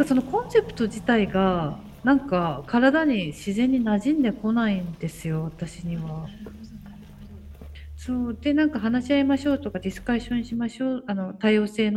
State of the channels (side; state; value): both; identical; correlation 1.00